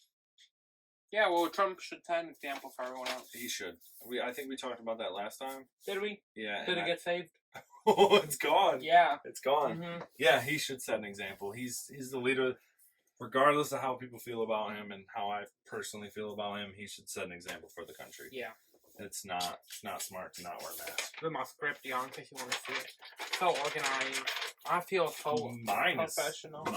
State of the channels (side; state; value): both; identical; correlation 1.00